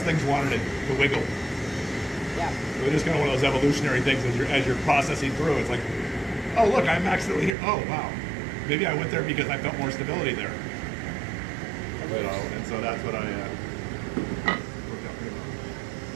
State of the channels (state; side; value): drops out; left; at 7.6 s